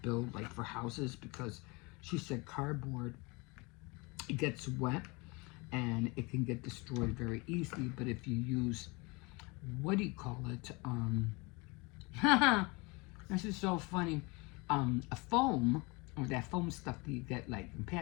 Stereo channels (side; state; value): right; quieter; 27.0 dB